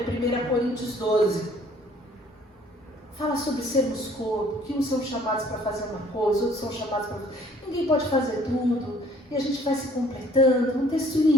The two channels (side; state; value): both; normal; correlation 0.58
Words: 1 Coríntios 12. Fala sobre sermos corpo, que uns são chamados para fazer uma coisa, outros são chamados para... Ninguém pode fazer tudo, e a gente vai se completando. Um texto